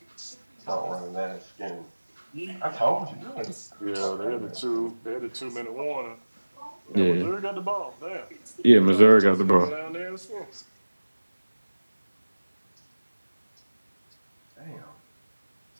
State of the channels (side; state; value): both; inverted; correlation -1.00